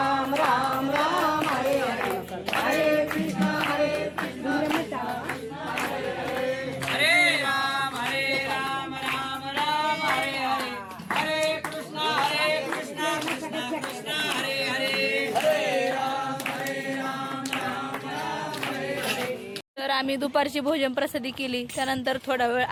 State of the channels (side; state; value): both; identical; correlation 1.00